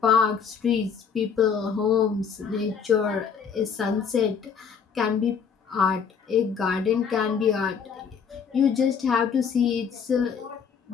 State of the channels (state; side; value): quieter; right; 6.7 dB